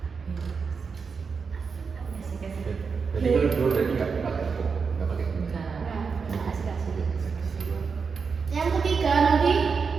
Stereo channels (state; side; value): quieter; left; 5.4 dB